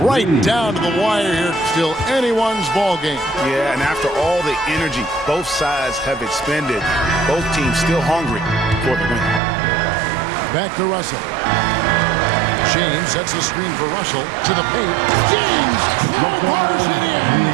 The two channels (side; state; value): left; drops out; at 9.4 s